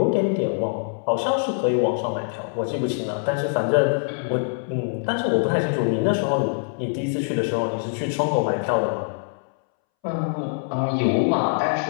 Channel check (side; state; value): right; silent; 63 dB below the other